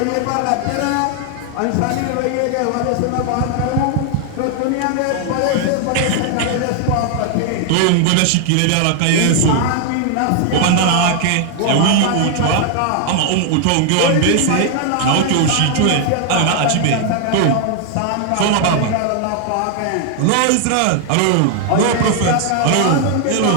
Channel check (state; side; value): different; both; correlation 0.00